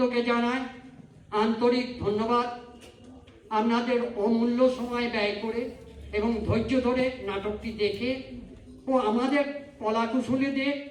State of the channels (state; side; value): identical; both; correlation 1.00